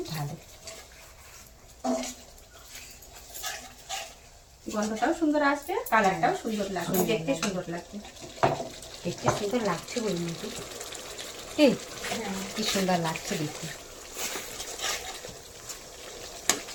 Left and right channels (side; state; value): both; identical; correlation 1.00